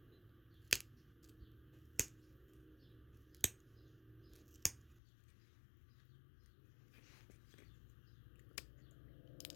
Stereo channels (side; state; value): right; drops out; at 5.0 s